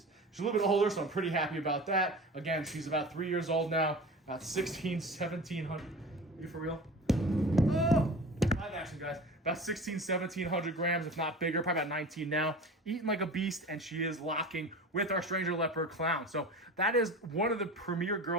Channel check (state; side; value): normal; both; correlation 0.35